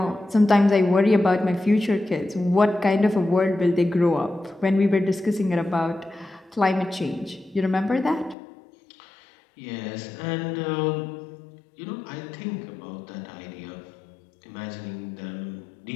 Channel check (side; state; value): right; drops out; at 8.3 s